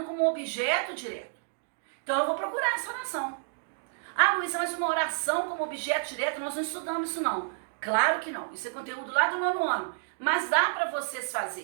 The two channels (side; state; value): left; silent; digital silence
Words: como objeto direto. Então eu vou procurar essa oração. Ah, Luísa, mas uma oração como objeto direto, nós não estudamos isso não. Claro que não, isso é conteúdo lá do 9º ano. Mas dá para vocês